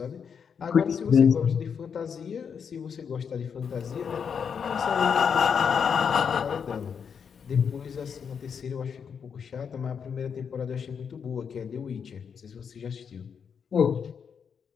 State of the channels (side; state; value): right; quieter; 6.9 dB